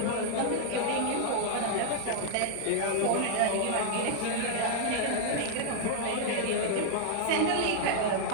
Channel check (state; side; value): different; both; correlation -0.01